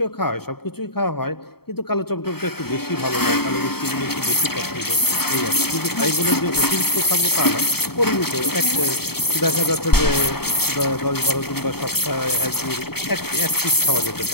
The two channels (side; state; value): right; late; 0.96 ms